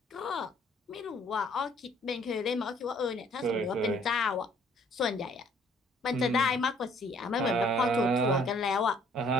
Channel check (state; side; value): normal; both; correlation 0.60